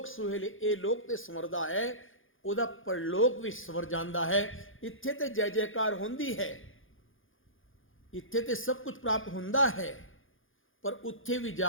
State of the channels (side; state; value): right; late; 0.58 ms